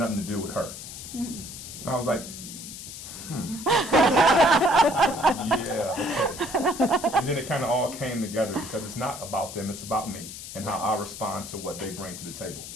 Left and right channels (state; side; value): noise; left; hiss, 11 dB below the sound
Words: to do with her. And I was like, yeah, okay. And then it kind of all came together, because it's not about them, it's about me and how I respond to what they bring to the table.